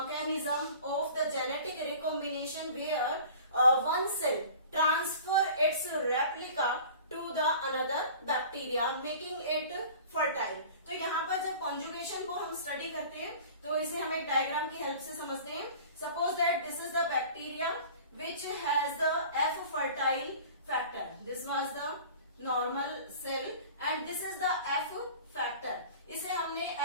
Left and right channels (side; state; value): both; inverted; correlation -0.42